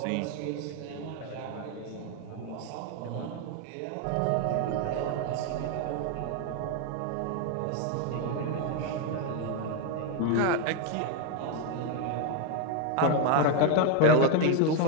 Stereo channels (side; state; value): both; different; correlation 0.01